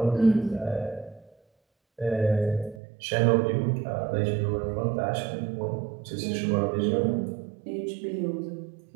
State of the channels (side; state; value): left; drops out; at 2.8 s